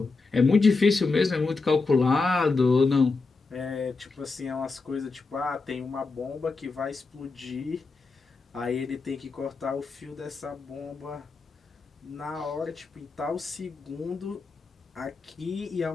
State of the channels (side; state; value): right; quieter; 4.0 dB